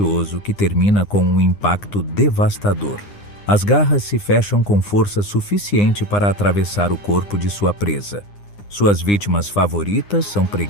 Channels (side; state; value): right; late; 9.8 ms